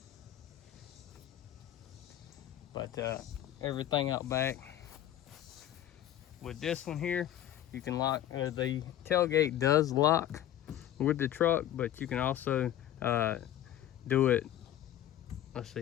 But everything out back. With this one here, you can lock, the tailgate does lock with the truck, but you can also do it, let's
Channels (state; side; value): quieter; right; 12.1 dB